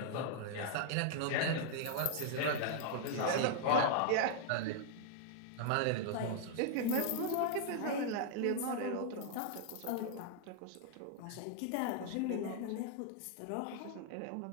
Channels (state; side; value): different; both; correlation 0.00